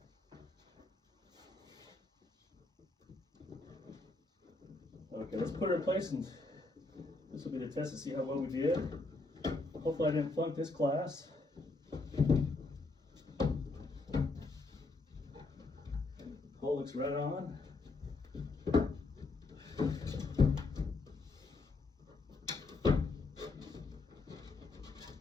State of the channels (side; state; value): right; quieter; 3.5 dB